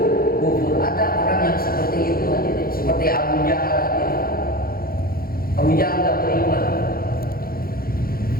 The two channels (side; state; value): right; late; 0.43 ms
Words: Ada orang yang seperti itu, seperti Abu Jahal. Abu Jahal enggak beriman.